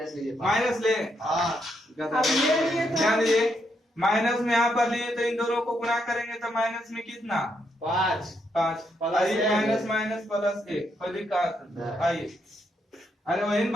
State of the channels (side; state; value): both; normal; correlation 0.78